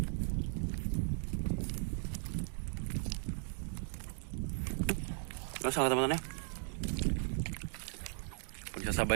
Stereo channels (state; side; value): silent; left; 53 dB below the other